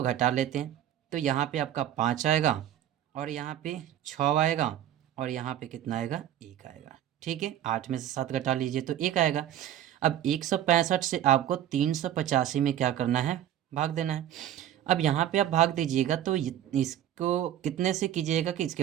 घटा लेते हैं, तो यहाँ पे आपका 5 आएगा, और यहाँ पे 6 आएगा, और यहाँ पे कितना आएगा, 1 आएगा, ठीक है। 8 में से 7 घटा लीजिए तो 1 आएगा। अब 165 से आपको 385 में क्या करना है, भाग देना है। अब यहाँ पे आप भाग दीजिएगा तो इसको कितने से कीजिएगा कि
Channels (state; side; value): quieter; left; 11.4 dB